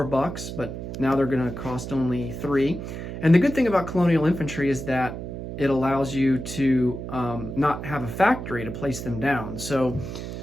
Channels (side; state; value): right; noise; hum, 8 dB below the sound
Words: but now they're going to cost only $3. And the good thing about colonial infantry is that it allows you to not have a factory to place them down. So,